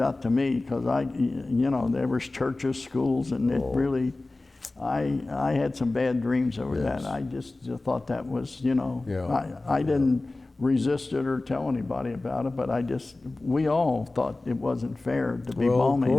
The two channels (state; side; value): quieter; right; 3.1 dB